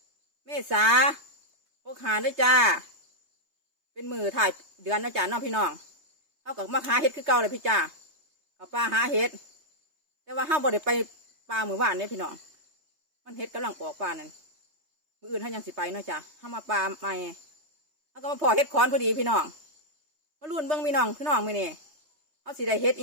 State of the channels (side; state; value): left; late; 3.3 ms